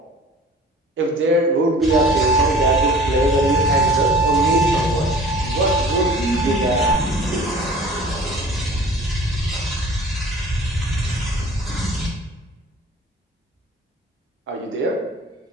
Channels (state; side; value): normal; both; correlation 0.45